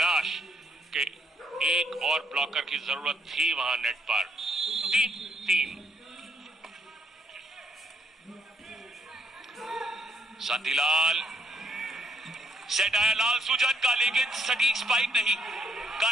कि एक और ब्लॉकर की जरूरत थी वहां नेट पर। 3-3 शांतिलाल, सेट आया लाल सुजन का, लेकिन सटीक स्पाइक नहीं।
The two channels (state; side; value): normal; both; correlation 0.71